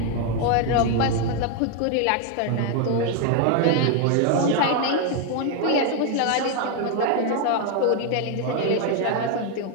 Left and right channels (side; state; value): both; different; correlation 0.01